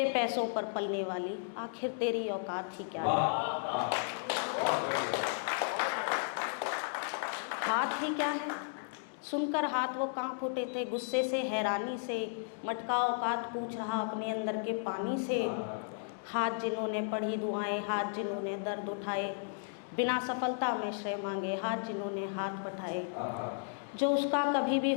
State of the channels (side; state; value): right; silent; digital silence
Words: पैसों पर पलने वाली आखिर तेरी औकात ही क्या है, हाथ ही क्या है। सुनकर हाथ वो कांप उठे थे गुस्से से हैरानी से, मटका औकात पूछ रहा अपने अंदर के पानी से, हाथ जिन्होंने पढ़ी दुआएं, हाथ जिन्होंने दर्द उठाए, बिना सफलता में श्रेय मांगे, हाथ जिन्होंने हाथ बढ़ाए, जो उसका कभी भी